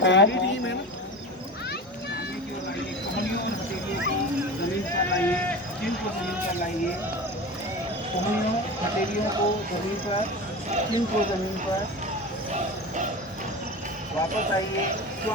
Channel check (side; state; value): both; normal; correlation 0.30